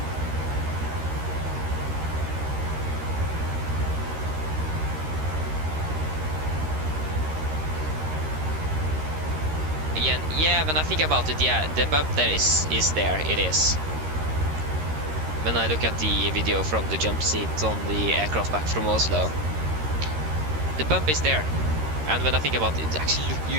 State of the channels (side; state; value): left; late; 13 ms